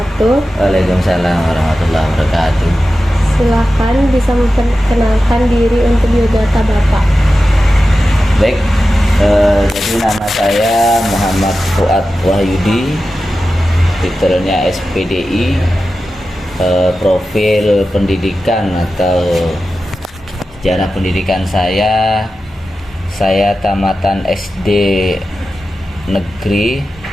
Waalaikumsalam warahmatullahi wabarakatuh. Silakan bisa memperkenalkan diri untuk biodata Bapak. Baik, jadi nama saya Muhammad Fuad Wahyudi, titelnya SPDI, profil pendidikan atau sejarah pendidikan saya tamatan SD negeri,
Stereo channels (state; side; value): normal; both; correlation 0.93